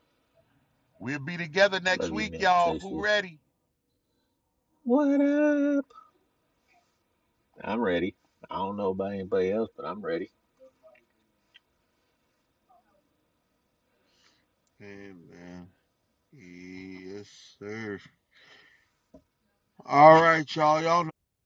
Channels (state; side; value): identical; both; correlation 1.00